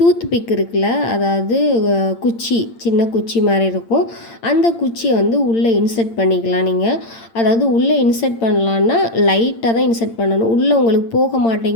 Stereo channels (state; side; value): late; right; 8.8 ms